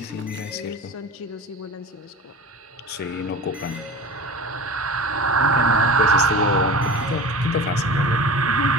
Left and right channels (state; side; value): normal; both; correlation 0.34